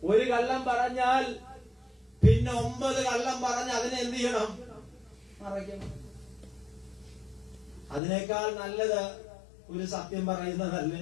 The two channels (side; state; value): right; drops out; at 8.0 s